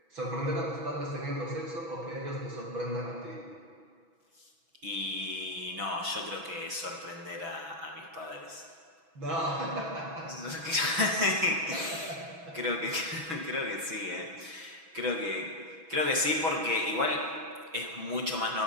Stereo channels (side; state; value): left; late; 6.1 ms